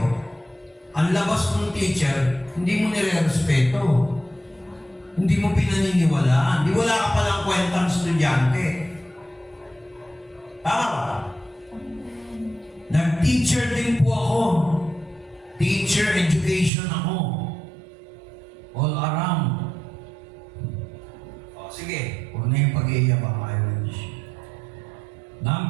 ang labas ng teacher, hindi mo nire-respeto. Hindi mo pinaniniwalaan. Di wala ka palang kwentang estudyante. Tama ba? Nag-teacher din po ako. Teacher education ako. All around. O, sige. Huwag na yung pag-iiyak ang Irish.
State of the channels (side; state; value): left; drops out; at 16.7 s